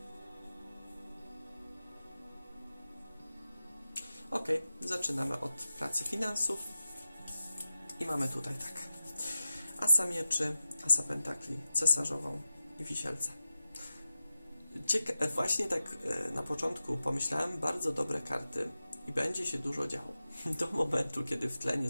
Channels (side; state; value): both; inverted; correlation -0.94